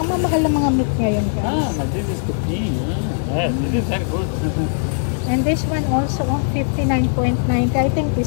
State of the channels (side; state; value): right; silent; digital silence